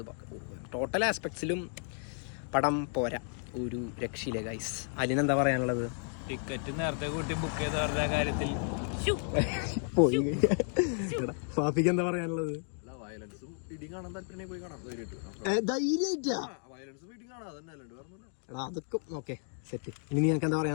ടോട്ടൽ ആസ്പെക്ട്സിലും പടം പോരാ, ഒരു രക്ഷയില്ല ഗൈസ്. അതിനെന്താ പറയാനുള്ളത്? ടിക്കറ്റ് നേരത്തെ കൂട്ടി ബുക്ക് ചെയ്ത് പറഞ്ഞ കാര്യത്തിൽ പോയി. ഫാഫിക്ക് എന്താ പറയാനുള്ളത്? അതൊക്കെ ഓക്കെ സെറ്റ്. ഇനി നിനക്ക് എന്താ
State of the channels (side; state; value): right; silent; 56 dB below the other